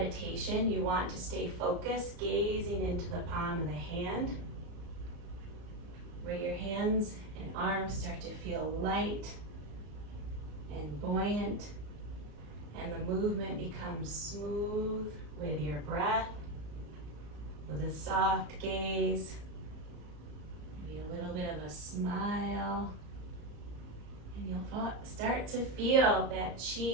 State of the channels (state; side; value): late; left; 34 ms